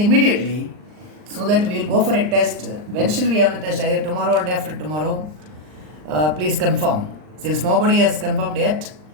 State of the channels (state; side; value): late; left; 39 ms